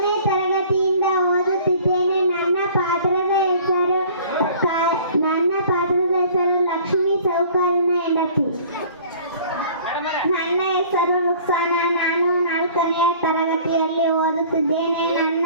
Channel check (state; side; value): inverted; both; correlation -0.50